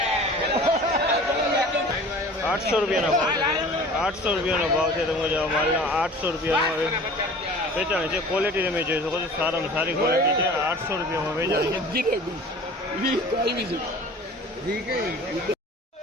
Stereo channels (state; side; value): normal; both; correlation 0.43